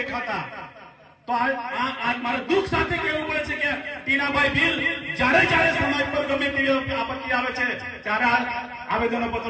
તો આ મારે દુઃખ સાથે કહેવું પડે છે કે ટીનાભાઈ ભીલ જ્યારે સમાજ પર ગમે તેવી આપત્તિ આવે છે, ત્યારે આવેદનો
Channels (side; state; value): both; identical; correlation 1.00